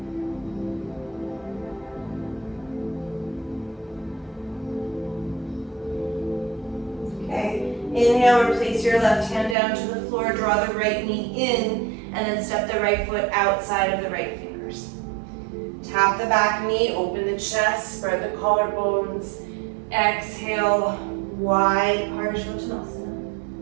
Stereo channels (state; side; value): drops out; left; at 9.6 s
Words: Okay. Inhale, replace your left hand down to the floor. Draw the right knee in. And then step the right foot outside of the right fingers. Tap the back knee, open the chest, spread the collarbones. Exhale, wide Parshvottanasana.